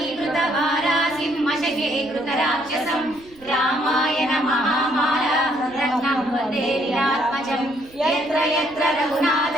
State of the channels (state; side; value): noise; right; rumble, 25 dB below the sound